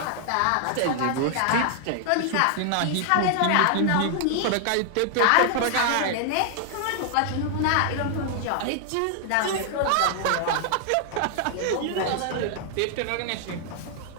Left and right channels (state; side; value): different; both; correlation 0.00